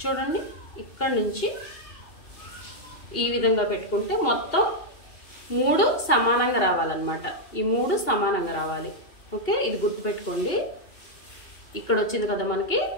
చూడండి, ఇక్కడ నుంచి ఈ విధంగా పెట్టుకుంటే మొత్తం 3 సమానంగా రావాలన్నమాట. ఈ 3 సమానంగా రావాలి. ఓకే, ఇది గుర్తుపెట్టుకోండి. ఇక్కడ వచ్చింది కదా మనకి,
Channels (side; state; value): right; late; 2.8 ms